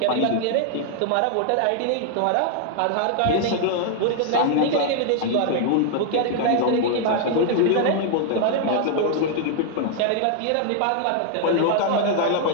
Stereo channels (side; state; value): both; different; correlation 0.00